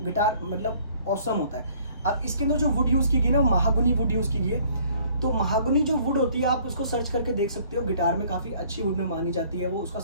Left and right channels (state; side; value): inverted; both; correlation -0.58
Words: गिटार मतलब ऑसम होता है। अब इसके अंदर जो वुड यूज़ की गई ना, वो महागनी वुड यूज़ की गई है। तो महागनी जो वुड होती है आप उसको सर्च करके देख सकते हो, गिटार में काफ़ी अच्छी वुड में मानी जाती है। वो उसका